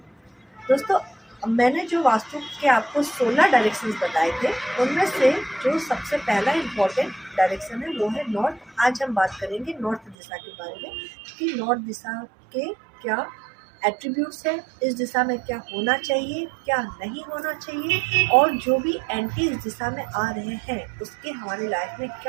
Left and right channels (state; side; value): drops out; left; at 10.2 s